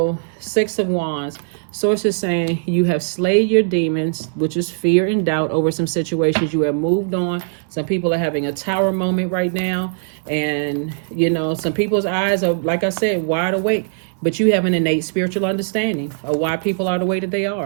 Six of Wands. Source is saying you have slayed your demons, which is fear and doubt over some situations. You have moved on. Some people are having a tower moment right now. And, you know, some people's eyes are, like I said, wide awake. But you have an innate spiritual understanding of why people are the way that they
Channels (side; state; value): left; silent; digital silence